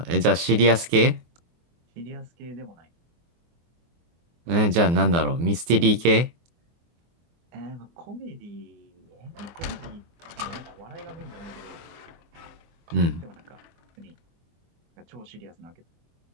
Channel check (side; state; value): left; late; 24 ms